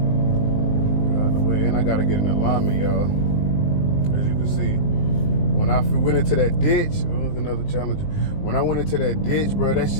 Out the way, and I gotta get an alignment, y'all. As you can see. When I went into that ditch, another challenge. When I went into that ditch, bro, that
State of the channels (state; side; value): late; right; 20 ms